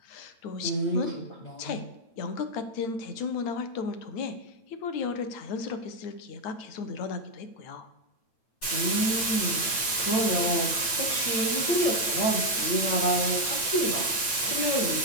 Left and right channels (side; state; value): right; late; 9.0 ms